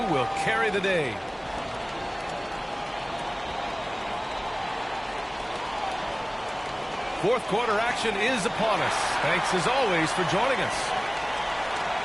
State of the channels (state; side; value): identical; both; correlation 1.00